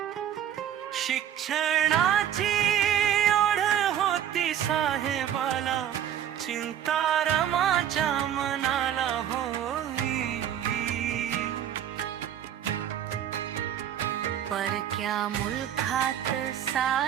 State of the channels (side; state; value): left; quieter; 10.3 dB